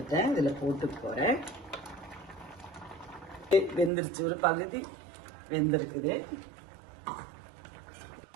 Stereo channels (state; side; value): drops out; left; at 3.9 s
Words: இதுல போட்டு போறேன். வெந்துருச்சு, ஒரு பகுதி வெந்திருக்குது.